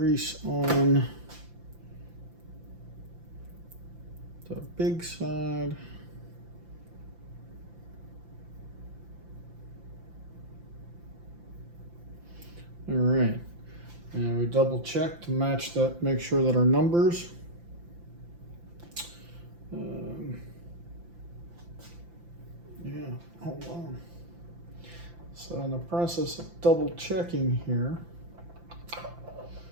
on the big side. All right, and we double check to match that, make sure that our numbers. Yeah, hold on. So in the process of double checking here,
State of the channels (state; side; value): late; left; 5.8 ms